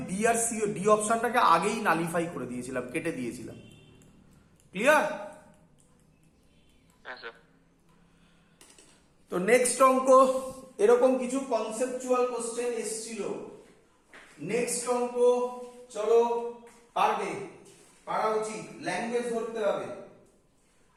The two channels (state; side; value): identical; both; correlation 1.00